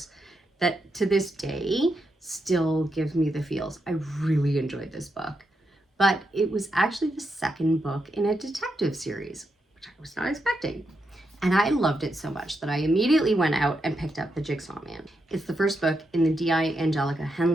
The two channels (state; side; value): normal; both; correlation 0.84